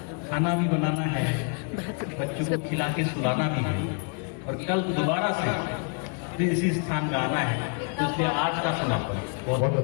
खाना भी बनाना है, बच्चों को खिला के सुलाना भी है और कल दोबारा से फिर इसी स्थान में आना है, तो इसलिए आज का समापन बहुत बहुत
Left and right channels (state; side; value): quieter; right; 38.8 dB